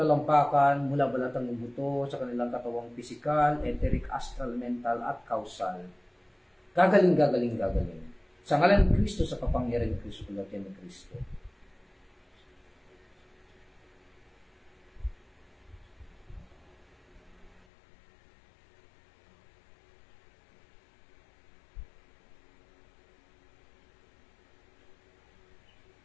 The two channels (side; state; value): right; drops out; at 17.6 s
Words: mula balatang buto, sa kanilang katawang pisikal, etheric, astral, mental, at causal. Gagaling, gagaling, gagaling. Sa ngalan ng Kristo, sa kapangyarihan ng Kristo, kulatian ng Kristo.